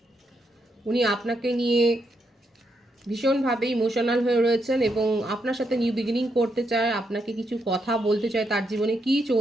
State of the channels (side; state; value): both; normal; correlation 0.80